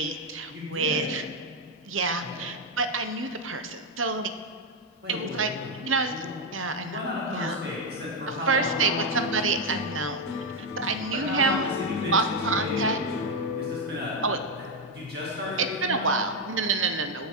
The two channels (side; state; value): both; normal; correlation 0.04